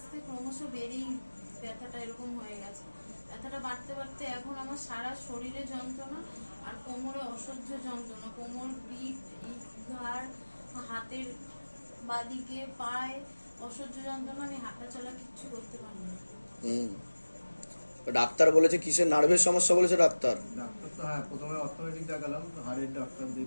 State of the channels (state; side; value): inverted; both; correlation -1.00